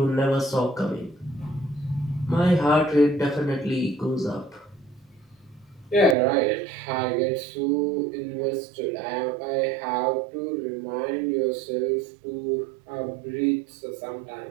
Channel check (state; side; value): drops out; left; at 6.2 s